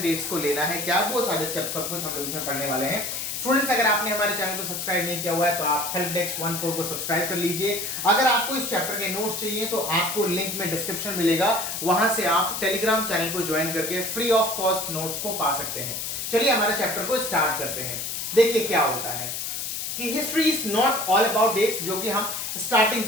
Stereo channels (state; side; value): noise; left; hiss, 4 dB below the sound